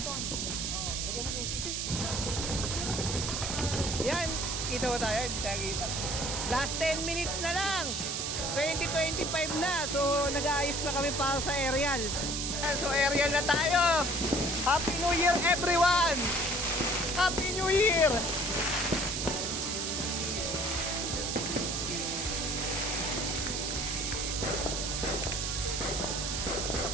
Yan, kita ba tayo? Hindi tayo kita. Last 10 minutes na lang. 2025 na. So, nag-aayos na kami para sa aerial. So, aerial na tayo. Happy New Year, everyone! Happy New Year!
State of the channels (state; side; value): noise; right; hiss, 2 dB below the sound